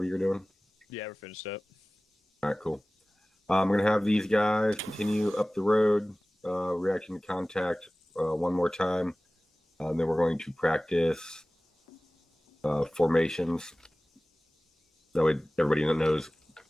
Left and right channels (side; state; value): both; normal; correlation 0.98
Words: you're doing? Yeah, we're finished up. All right, cool. I'm going to have these guys continue up the road, reaction to contact one more time. Then we're going to practice formations. That way everybody knows